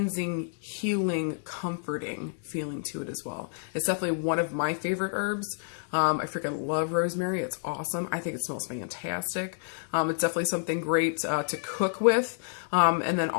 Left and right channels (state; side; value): silent; right; 59 dB below the other